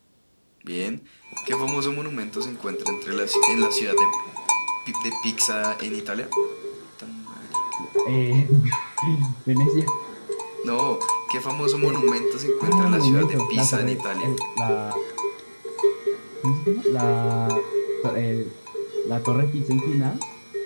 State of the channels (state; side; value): inverted; both; correlation -1.00